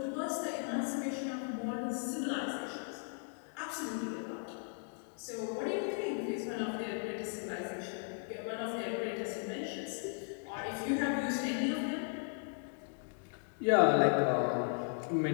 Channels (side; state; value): right; silent; 53 dB below the other